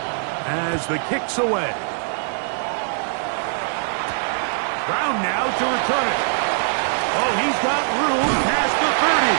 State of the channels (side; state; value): left; silent; 64 dB below the other